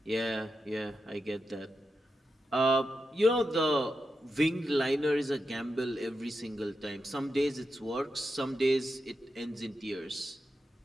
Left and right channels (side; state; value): both; normal; correlation 0.88